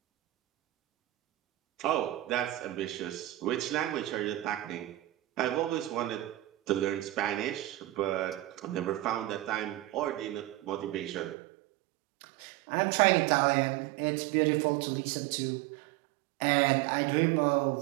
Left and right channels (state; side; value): drops out; left; at 11.4 s